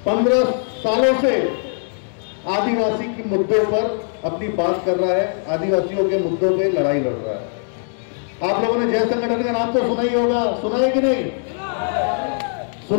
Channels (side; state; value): right; silent; digital silence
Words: 15 सालों से आदिवासी के मुद्दों पर अपनी बात कर रहा है, आदिवासियों के मुद्दों पे लड़ाई लड़ रहा है। आप लोगों ने जय संगठन का नाम तो सुना ही होगा, सुना है कि नहीं?